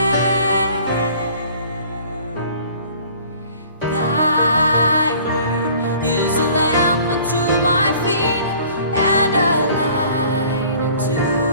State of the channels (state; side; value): inverted; both; correlation -0.51